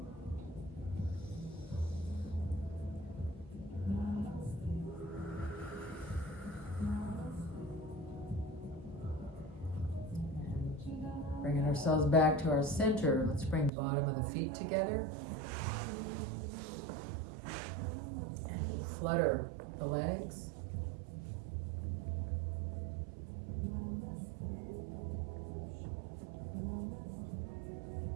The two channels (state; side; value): drops out; left; at 13.7 s